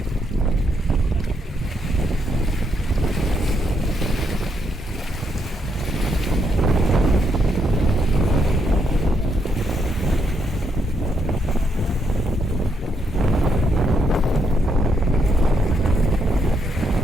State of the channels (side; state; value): both; normal; correlation 0.77